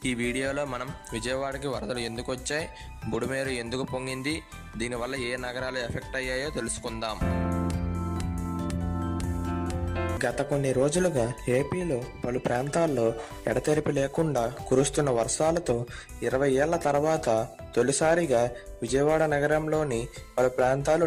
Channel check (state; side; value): identical; both; correlation 1.00